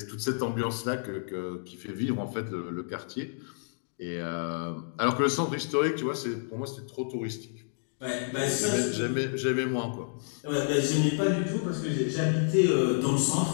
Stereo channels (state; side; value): silent; right; digital silence